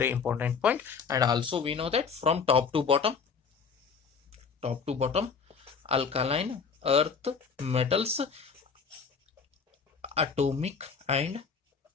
important point. And also we know that from top to bottom alkaline earth metals atomic and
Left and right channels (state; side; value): quieter; right; 5.8 dB